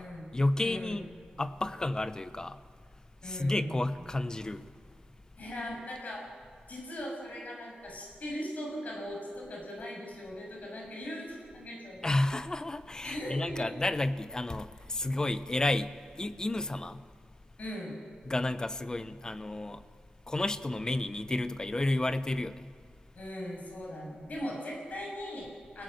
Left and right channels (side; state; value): both; normal; correlation 0.91